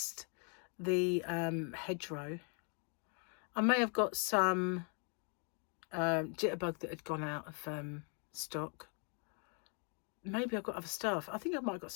the hedgerow. I may have got some jitterbug that had gone out of stock. Maybe I've got other stuff. I think I might have got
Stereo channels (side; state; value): right; quieter; 39.1 dB